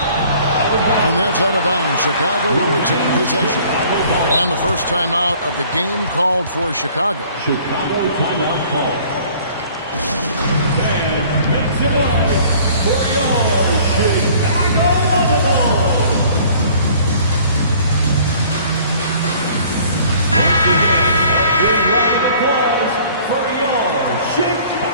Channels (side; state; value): both; inverted; correlation -0.53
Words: And that's out of bounds. Chicago will retain possession. And the first timeout of the game called for Chicago. Chicago timeout call. And make some noise for your Chicago Bulls. Once again, a big round of applause for your